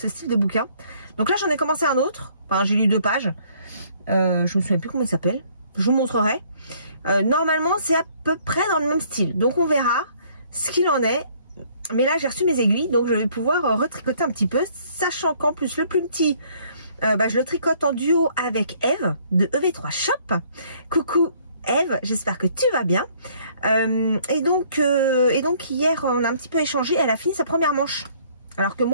style de bouquin. Donc là, j'en ai commencé un autre. Enfin, j'ai lu 2 pages. Je me souviens plus comment il s'appelle. Je vous montrerai. Normalement, c'est à peu près dans le même style. Donc on verra ce qu'il en est. Mais là, j'ai reçu mes aiguilles. Donc je vais pouvoir retricoter un petit peu. Sachant qu'en plus, le plus petit... je le tricote en duo avec Eve de EV3 Shop. Coucou Eve, j'espère que tu vas bien. Et donc hier on a un petit peu échangé. Elle a fini sa première manche, alors que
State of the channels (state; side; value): inverted; both; correlation -0.61